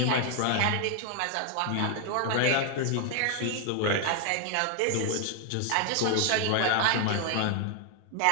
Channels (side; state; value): both; different; correlation 0.00